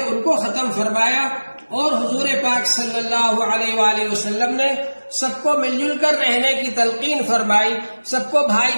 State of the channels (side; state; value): both; inverted; correlation -1.00